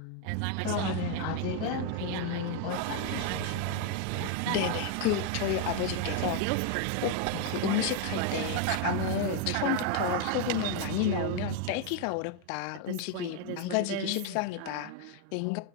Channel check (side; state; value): both; different; correlation 0.01